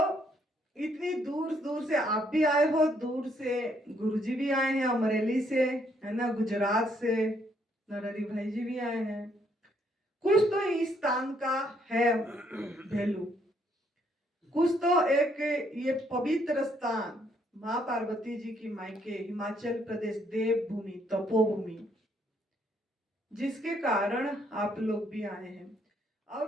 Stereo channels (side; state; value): both; normal; correlation 0.70